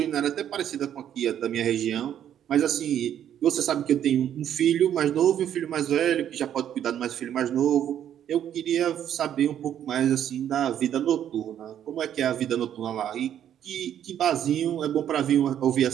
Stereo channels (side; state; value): left; quieter; 10.2 dB